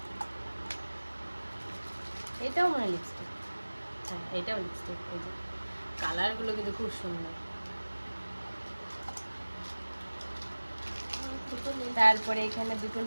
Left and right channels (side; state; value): both; inverted; correlation -1.00